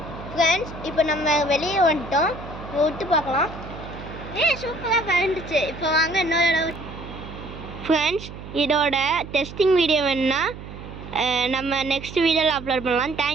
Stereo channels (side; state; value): right; noise; hum, 13 dB below the sound